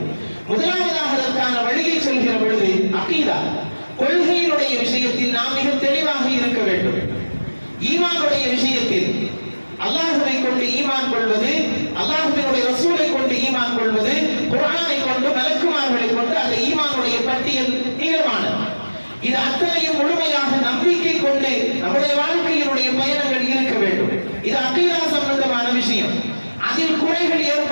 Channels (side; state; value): both; inverted; correlation -1.00